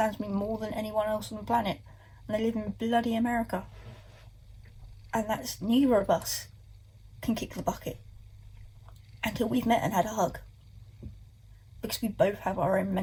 me more than anyone else on the planet, and they live in bloody America. And that's neither of us. can kick the bucket until we've met and had a hug, because we both have our own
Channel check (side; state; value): both; identical; correlation 1.00